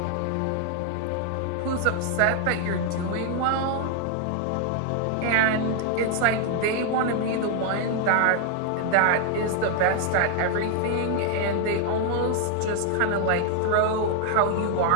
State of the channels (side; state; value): both; different; correlation 0.00